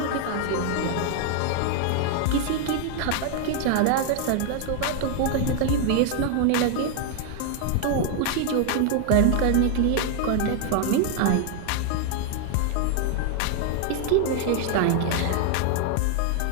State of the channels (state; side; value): different; both; correlation 0.00